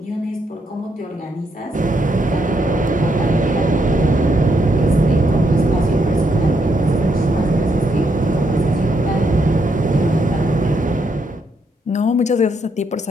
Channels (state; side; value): normal; both; correlation 0.77